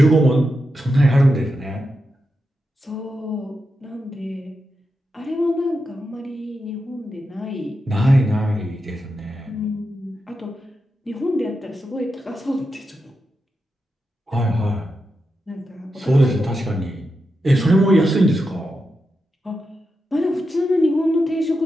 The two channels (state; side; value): normal; both; correlation 0.88